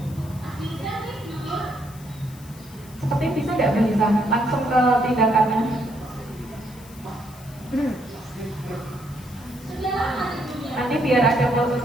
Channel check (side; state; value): left; noise; hiss, 22 dB below the sound